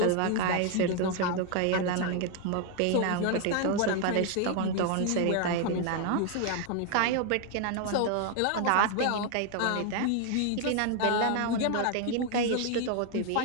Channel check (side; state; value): both; different; correlation 0.01